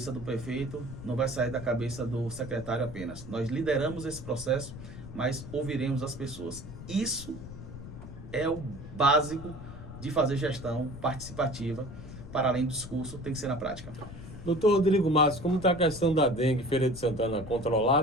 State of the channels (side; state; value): left; noise; rumble, 12 dB below the sound